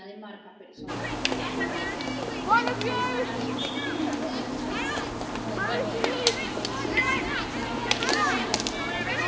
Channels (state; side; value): identical; both; correlation 1.00